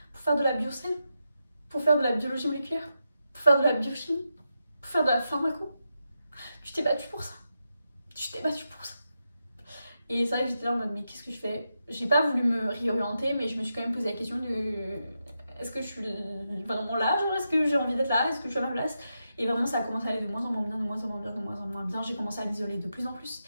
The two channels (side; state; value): both; inverted; correlation -0.87